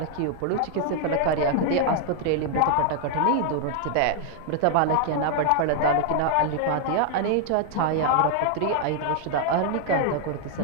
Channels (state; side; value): different; both; correlation 0.00